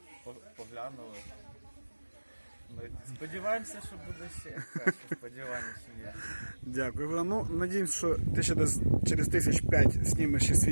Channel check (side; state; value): both; inverted; correlation -1.00